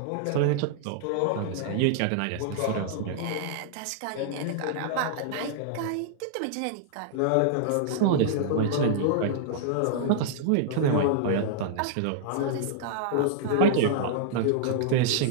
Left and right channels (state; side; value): different; both; correlation -0.01